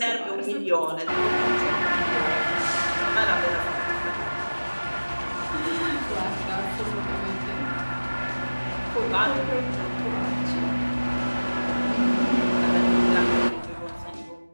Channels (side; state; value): both; inverted; correlation -1.00